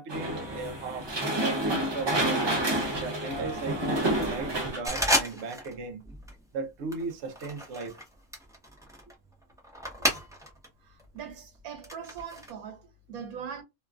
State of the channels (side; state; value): both; normal; correlation 0.07